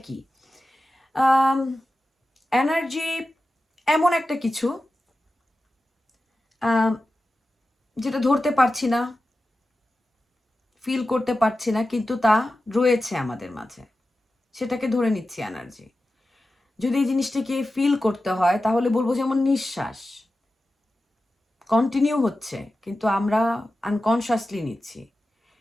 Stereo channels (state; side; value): normal; both; correlation 0.93